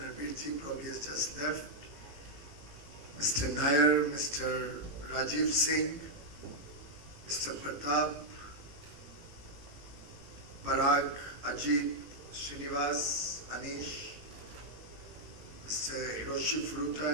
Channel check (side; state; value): left; late; 18 ms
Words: probably has just left. Mr. Nair, Mr. Rajiv Singh, Mr. Pratap, Parag, Ajit, Srinivas, Anish, Mr. Hiroshi Furuta,